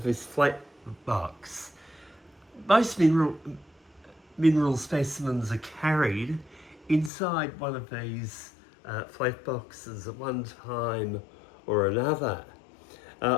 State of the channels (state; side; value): drops out; right; at 7.1 s